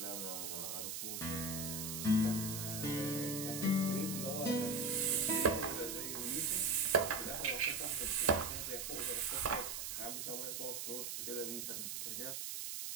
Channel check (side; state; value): right; noise; hiss, 4 dB below the sound